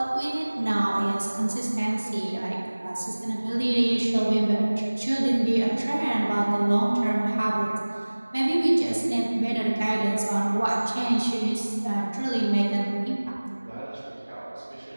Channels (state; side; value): inverted; both; correlation -1.00